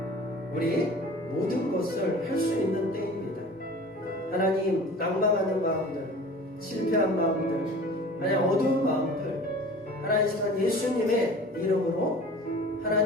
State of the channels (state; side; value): normal; both; correlation 0.42